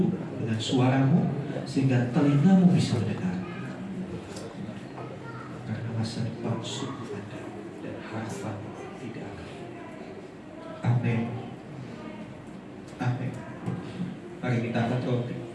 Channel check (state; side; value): identical; both; correlation 1.00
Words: dengan suaramu sehingga telingamu bisa mendengar. Karena masa depan sungguh ada dan harapan tidak ada. Amin. Amin. Mari kita angkat roti.